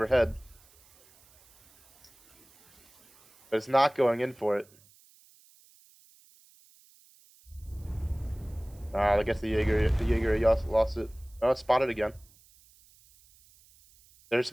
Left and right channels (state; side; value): noise; right; hiss, 29 dB below the sound